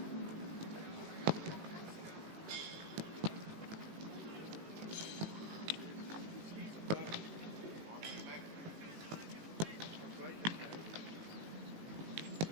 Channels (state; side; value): late; left; 18 ms